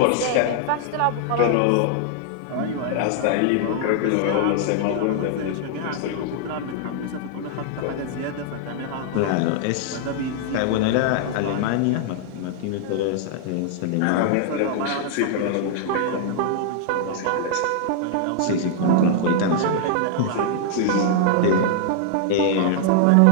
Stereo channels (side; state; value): both; different; correlation -0.01